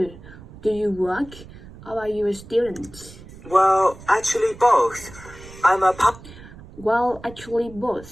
Do you work or are you a student? Well, actually both. I'm a Well, actually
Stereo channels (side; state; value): right; noise; rumble, 18 dB below the sound